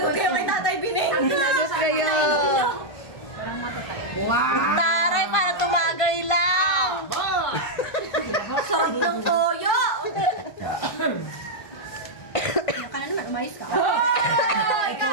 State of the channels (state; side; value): late; right; 1.5 ms